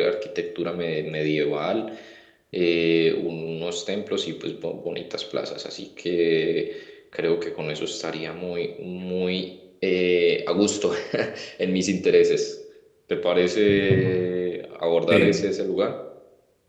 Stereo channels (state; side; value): identical; both; correlation 1.00